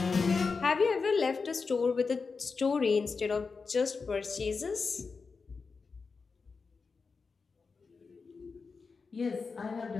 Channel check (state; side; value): quieter; right; 4.7 dB